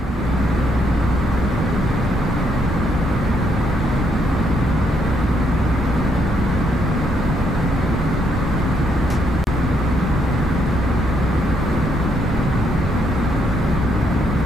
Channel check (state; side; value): normal; both; correlation 0.74